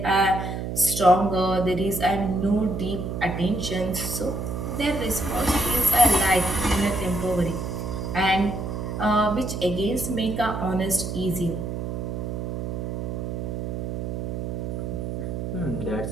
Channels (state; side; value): noise; right; hum, 4 dB below the sound